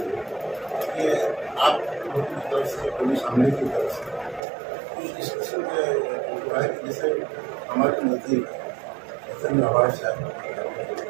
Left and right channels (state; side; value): drops out; left; at 4.4 s